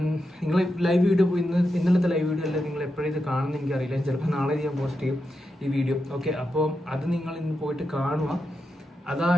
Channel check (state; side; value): normal; both; correlation 0.87